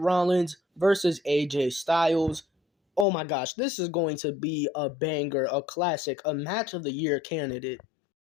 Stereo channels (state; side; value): drops out; right; at 3.1 s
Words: versus AJ Styles. Oh my gosh, this is going to be a banger, a classic, a match of the year candidate.